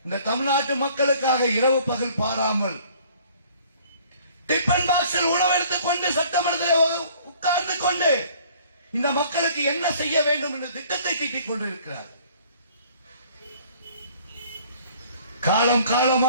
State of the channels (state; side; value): inverted; both; correlation -0.55